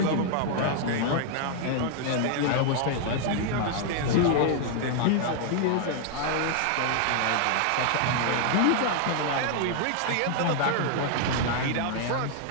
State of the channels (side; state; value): both; different; correlation 0.00